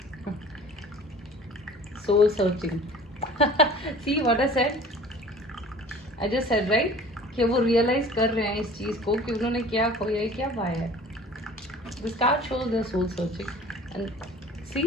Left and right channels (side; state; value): both; normal; correlation 0.45